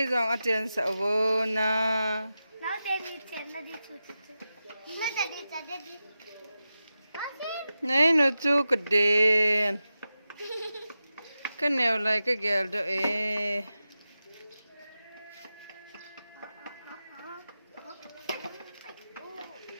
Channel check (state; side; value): inverted; both; correlation -0.92